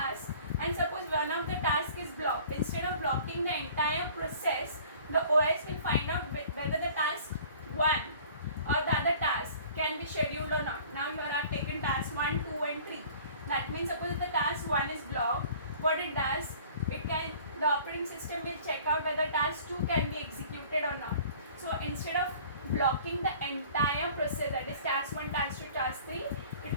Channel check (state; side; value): inverted; both; correlation -0.49